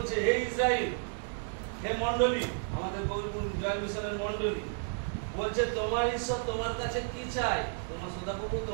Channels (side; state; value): left; silent; digital silence